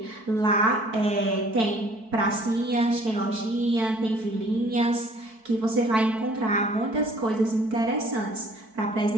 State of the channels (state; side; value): late; left; 4.6 ms